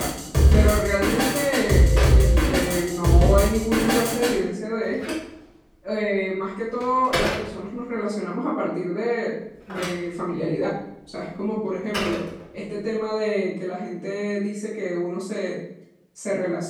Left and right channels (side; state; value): both; identical; correlation 1.00